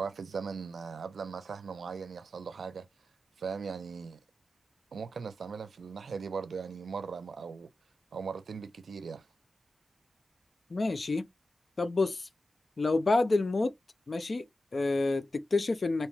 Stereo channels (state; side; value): normal; both; correlation 0.93